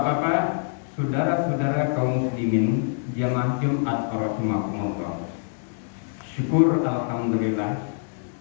saudara-saudara kaum muslimin jamaah Jumat rahimakumullah. Syukur alhamdulillah,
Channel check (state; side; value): silent; right; digital silence